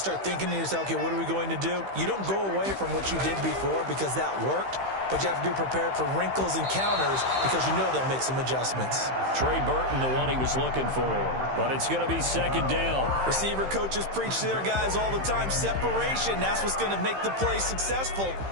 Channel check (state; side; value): late; left; 15 ms